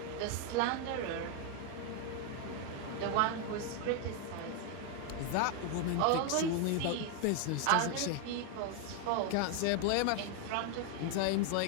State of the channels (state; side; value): different; both; correlation 0.01